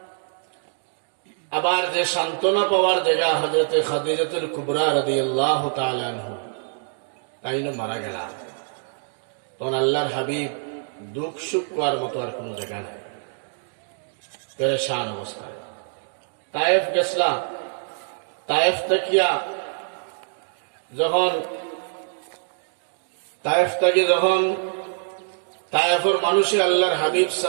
আবার যে সান্ত্বনা পাওয়ার জায়গা হযরতে খাদিজাতুল কুবরা রাদিয়াল্লাহু তাআলা আনহা, তাই না মারা গেলাম। তখন আল্লাহর হাবিব দুঃখ সুখ পাওয়ার মতো আর কোনো জায়গা নাই, পেরেশান অবস্থায়। তায়েফ গেছলাম। তায়েফ থেকে যখন তায়েফের মানুষে আল্লাহর হাবিব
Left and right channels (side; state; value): left; silent; digital silence